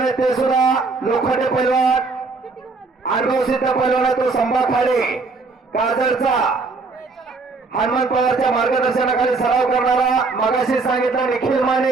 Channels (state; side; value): quieter; left; 4.0 dB